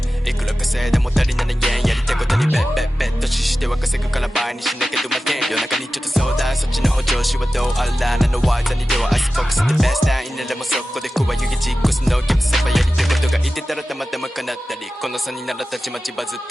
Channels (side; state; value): both; normal; correlation 0.95